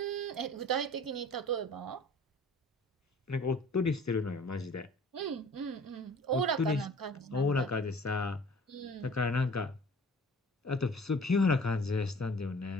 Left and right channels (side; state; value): both; normal; correlation 0.47